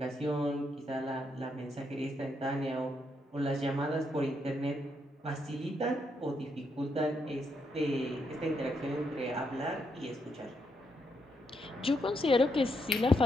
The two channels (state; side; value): normal; both; correlation 0.79